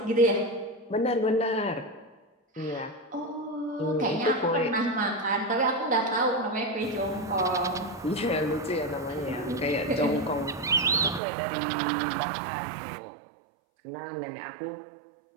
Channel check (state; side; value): drops out; left; at 11.2 s